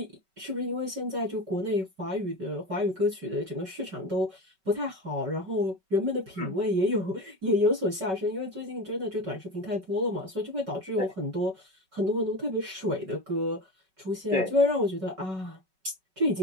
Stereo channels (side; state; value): left; late; 5.3 ms